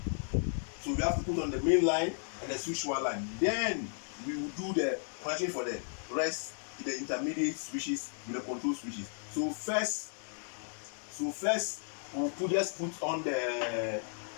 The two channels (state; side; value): silent; right; 55 dB below the other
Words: So we have to put on the main line and the switch wire line. Then we will do the connection for the rest, the intermediate switches with the control switches. So first we just put on the